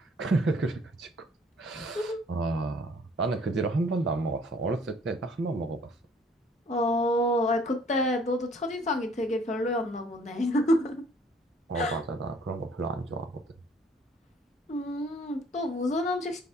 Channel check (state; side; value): normal; both; correlation 0.58